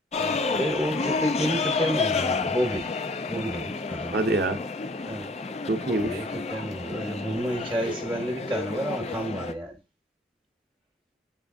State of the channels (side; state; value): both; normal; correlation 0.55